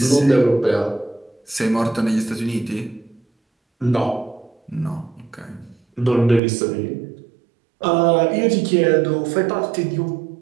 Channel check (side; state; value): left; drops out; at 6.4 s